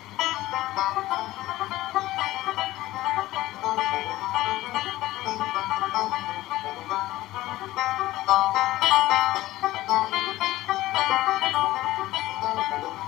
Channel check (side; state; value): right; quieter; 16.6 dB